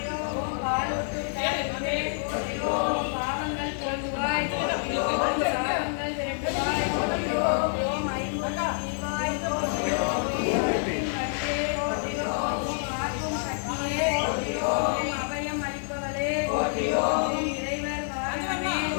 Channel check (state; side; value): silent; right; digital silence